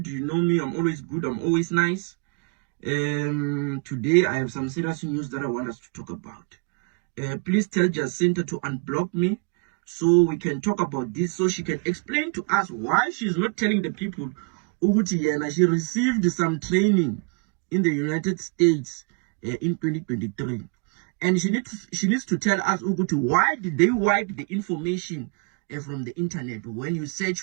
You know me. I'm always good. I'm always nice. Today I have some serious news that I want us to talk about. Please tell Jacinta to unblock me so we can talk about this, so she can explain to us why she's not telling the people Uguti Yena she received some training in the United States in 2023. And she needs to tell us Uguti, why did they wipe the information from the internet? When you search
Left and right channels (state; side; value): quieter; left; 35.6 dB